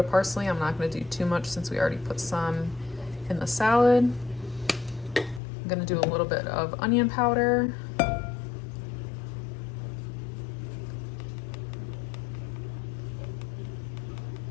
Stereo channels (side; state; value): right; drops out; at 5.4 s